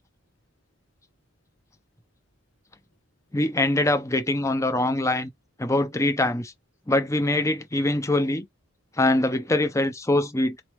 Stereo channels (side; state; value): both; normal; correlation 0.62